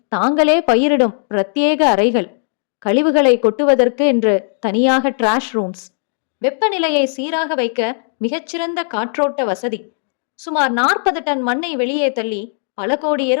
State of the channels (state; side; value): silent; right; 68 dB below the other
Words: தாங்களே பயிரிடும் பிரத்யேக அறைகள். கழிவுகளை கொட்டுவதற்கு என்று தனியாக டிராஷ் ரூம்ஸ். வெப்பநிலையை சீராக வைக்க மிகச்சிறந்த காற்றோட்ட வசதி. சுமார் 40 டன் மண்ணை வெளியே தள்ளி பல கோடி